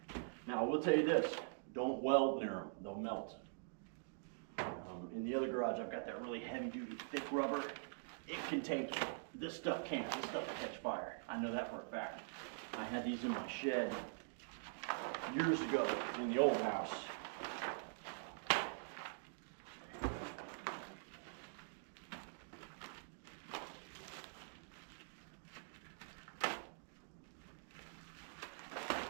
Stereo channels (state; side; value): silent; left; digital silence